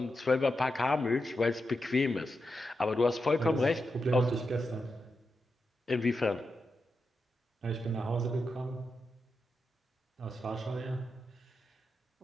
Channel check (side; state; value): both; normal; correlation 0.87